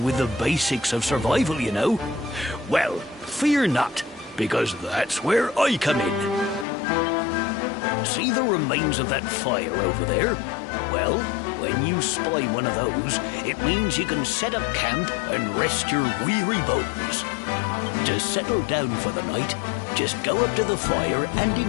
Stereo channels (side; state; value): right; drops out; at 6.7 s